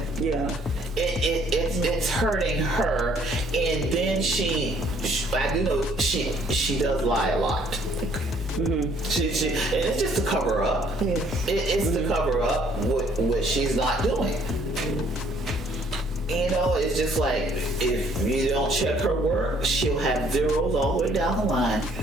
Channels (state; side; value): normal; both; correlation 0.62